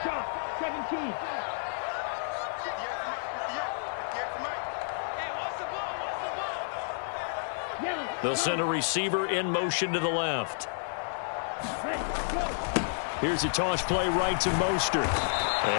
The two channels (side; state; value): right; silent; 57 dB below the other